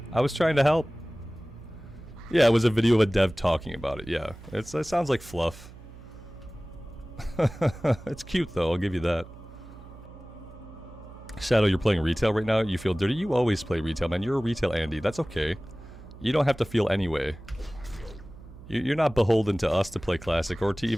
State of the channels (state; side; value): noise; right; hum, 18 dB below the sound